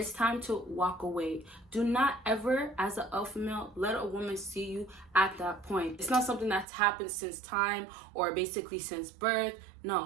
time to walk away. Do not ever, as an alpha male, let a woman see you at that point. It's not something that's happened since time or basically since birth.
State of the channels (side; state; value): left; drops out; at 6.7 s